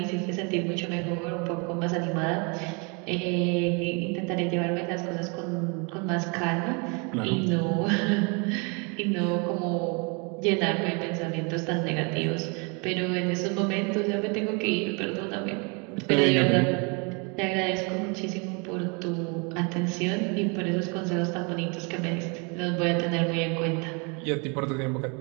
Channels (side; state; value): left; quieter; 32.7 dB